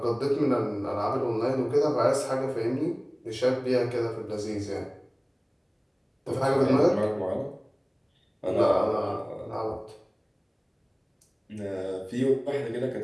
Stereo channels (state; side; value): identical; both; correlation 1.00